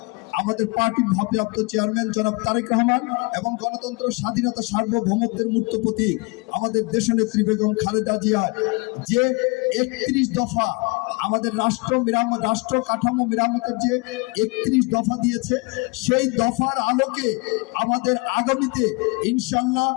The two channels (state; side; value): quieter; right; 28.2 dB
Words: আমাদের পার্টির ভারপ্রাপ্ত চেয়ারম্যান জনাব তারেক রহমান এবং গণতন্ত্র, স্বাধীনতা, সার্বভৌমত্বের মূর্ত প্রতীক আমাদের দেশনেত্রী বেগম খালেদা জিয়ার যে 31 দফা আমাদের রাষ্ট্র কাঠামো মেরামতের যে 31 দফা দিয়েছে, সেই দফার আলোকে আমাদের আগামীতে ইনশাআল্লাহ